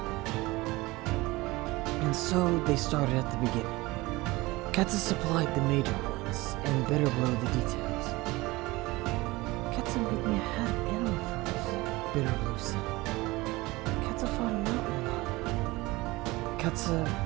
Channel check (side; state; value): left; quieter; 21.2 dB